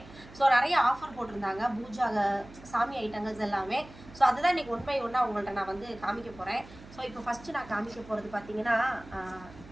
ஸோ நிறைய ஆஃபர் போட்டிருந்தாங்க பூஜா சாமி ஐட்டங்கள்ஸ் எல்லாமே. ஸோ அதுதான் இன்றைக்கி ஒன் பை ஒன்னாக உங்கள்கிட்ட நான் வந்து காமிக்க போகிறேன். ஸோ இப்போ ஃபஸ்ட்டு நான் காமிக்க போகிறது பார்த்தீங்கன்னா,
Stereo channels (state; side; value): noise; right; hum, 19 dB below the sound